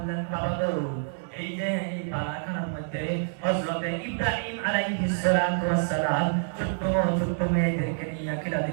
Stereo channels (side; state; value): left; silent; digital silence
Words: বাবা গো, এই যে এই বালাখানার মধ্যে হযরত ইব্রাহিম আলাইহিস সালাতু ওয়াস সালাম ছোট্ট ছোট্ট মেয়েদেরকে নিয়ে